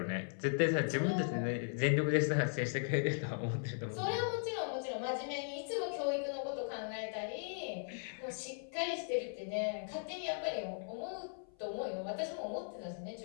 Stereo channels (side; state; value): right; silent; 52 dB below the other